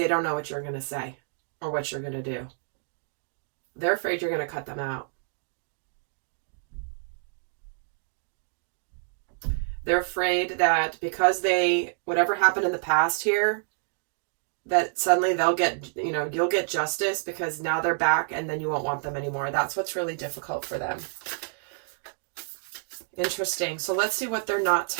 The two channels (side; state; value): left; silent; digital silence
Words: don't know what you're going to say or what you're going to do. They're afraid you're going to cut them out. They're afraid that because whatever happened in the past here, that suddenly they'll get, you know, you'll get justice because now they're back and then you won't want them anymore. That's what's really difficult for them. Interesting. So let's see what they're not